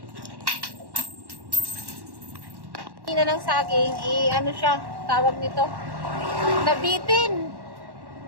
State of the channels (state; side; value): late; left; 1.1 ms